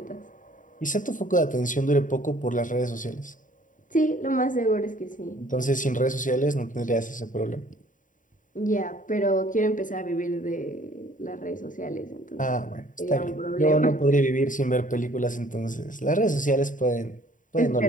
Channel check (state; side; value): late; right; 0.38 ms